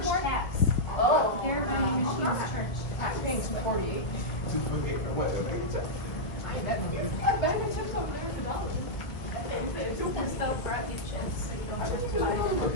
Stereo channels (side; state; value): right; late; 1.5 ms